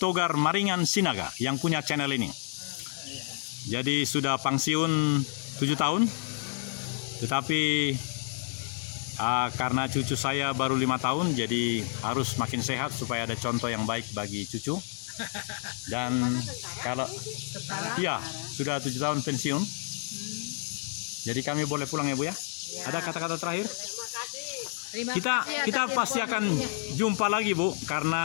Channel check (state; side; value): silent; right; 58 dB below the other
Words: Maringan Sinaga yang punya channel ini. Jadi sudah pensiun 7 tahun. Tetapi karena cucu saya baru 5 tahun, jadi harus makin sehat supaya ada contoh yang baik bagi cucu. Dan kalau ya sudah 7 tahun pensiun, jadi kami boleh pulang ya Bu ya. Ada kata-kata terakhir? Kita pasti akan jumpa lagi Bu,